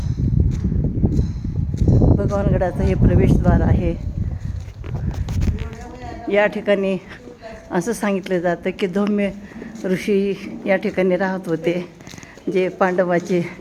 भगवानगडाचं हे प्रवेशद्वार आहे. या ठिकाणी असं सांगितलं जातं की धौम्य ऋषी या ठिकाणी राहत होते, जे पांडवाचे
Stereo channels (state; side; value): identical; both; correlation 1.00